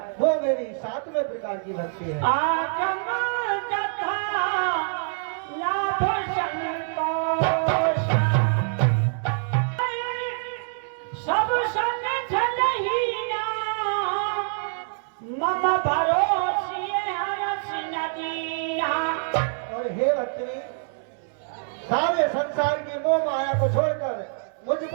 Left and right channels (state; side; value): silent; left; 61 dB below the other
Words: वो मेरी सातवें प्रकार की भक्ति है। सब संग मम भरोसिए हरस नदीना। और हे भक्तनी, सारे संसार की मोह माया को छोड़कर मुझ